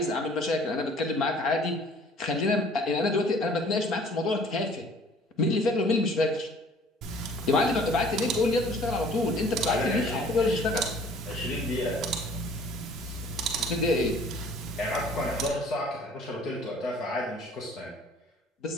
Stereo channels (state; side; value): normal; both; correlation 0.53